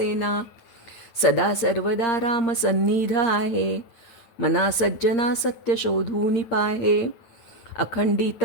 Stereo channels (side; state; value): right; late; 9.1 ms